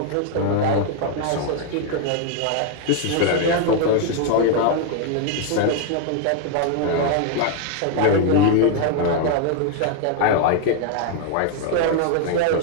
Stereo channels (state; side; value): different; both; correlation 0.01